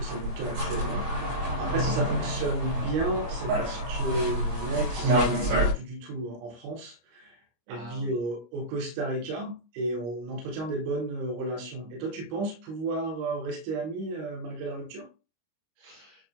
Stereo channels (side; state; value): left; late; 25 ms